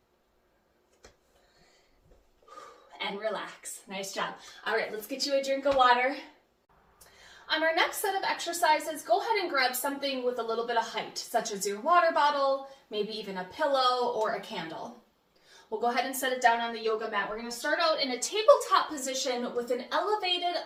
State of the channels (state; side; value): identical; both; correlation 1.00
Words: And relax. Nice job. All right, let's get you a drink of water. On our next set of exercises, go ahead and grab something with a little bit of height, such as your water bottle, maybe even a pillow or a candle. We'll go ahead and set it down on the yoga mat. We're going to start out in a tabletop position with an elevated